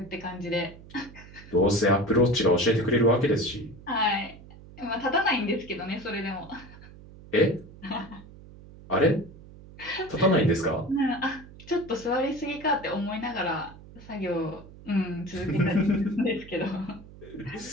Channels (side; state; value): right; noise; hum, 19 dB below the sound